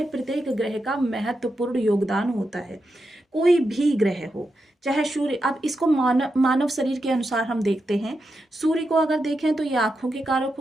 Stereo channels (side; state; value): both; normal; correlation 0.87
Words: प्रत्येक ग्रह का महत्वपूर्ण योगदान होता है। कोई भी ग्रह हो, चाहे सूर्य, अब इसको मानव शरीर के अनुसार हम देखते हैं। सूर्य को अगर देखें तो ये आंखों के कारक